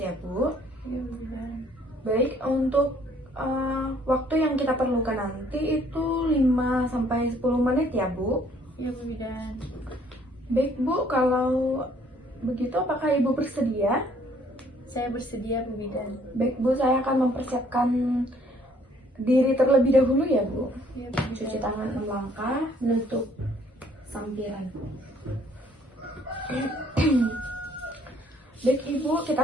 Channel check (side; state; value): both; normal; correlation 0.62